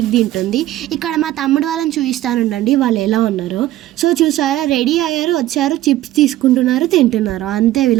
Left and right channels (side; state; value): left; quieter; 14.6 dB